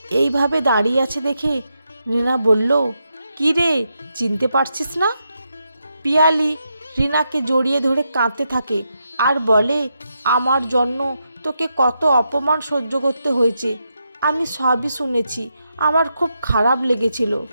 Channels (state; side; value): inverted; both; correlation -0.84